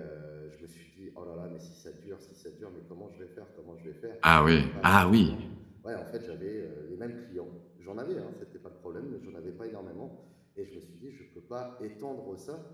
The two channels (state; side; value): identical; both; correlation 1.00